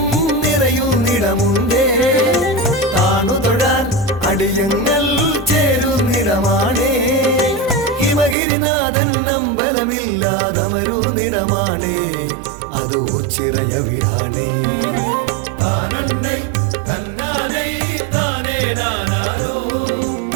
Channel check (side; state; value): left; drops out; at 8.3 s